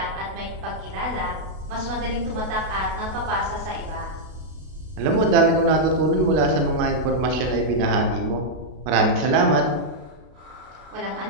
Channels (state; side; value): late; left; 32 ms